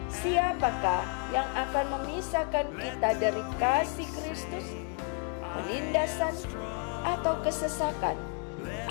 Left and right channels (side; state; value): right; quieter; 36.0 dB